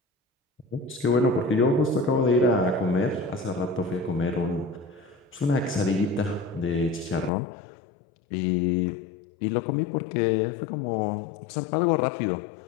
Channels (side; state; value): right; drops out; at 7.3 s